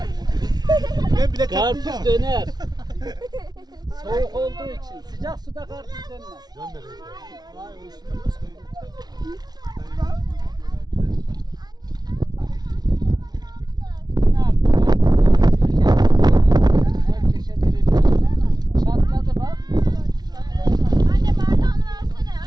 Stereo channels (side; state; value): left; late; 0.19 ms